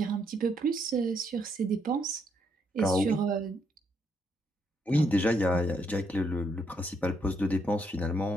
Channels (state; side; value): normal; both; correlation 0.74